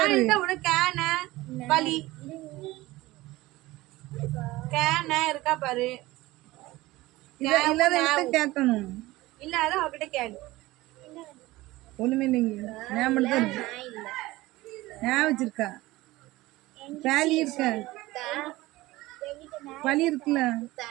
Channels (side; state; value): left; quieter; 19.0 dB